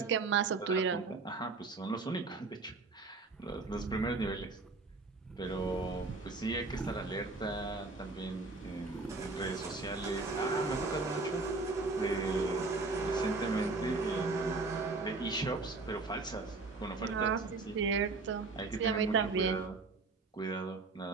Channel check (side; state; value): left; quieter; 3.8 dB